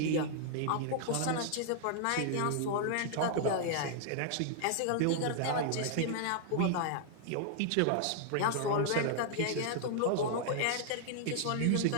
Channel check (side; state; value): both; different; correlation 0.00